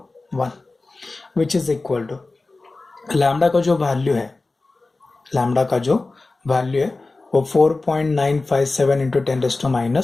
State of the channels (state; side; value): quieter; right; 3.4 dB